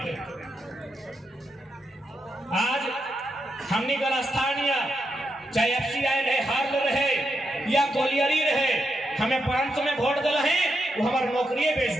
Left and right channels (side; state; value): both; normal; correlation 0.83